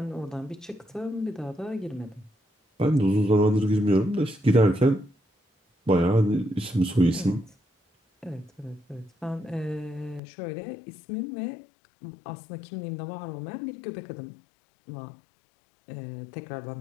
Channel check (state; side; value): drops out; right; at 10.2 s